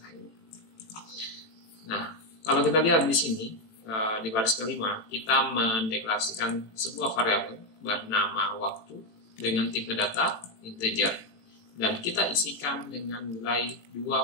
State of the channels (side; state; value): right; late; 18 ms